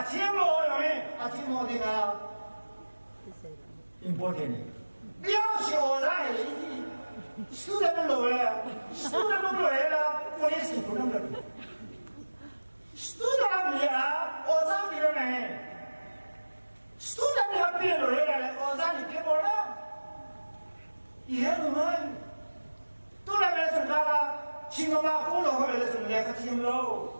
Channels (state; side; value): inverted; both; correlation -1.00